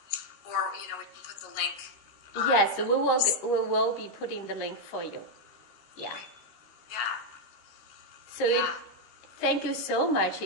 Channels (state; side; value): late; right; 13 ms